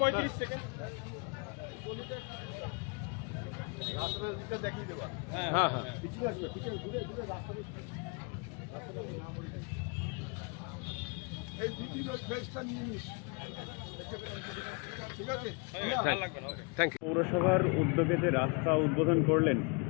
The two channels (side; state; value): right; quieter; 33.0 dB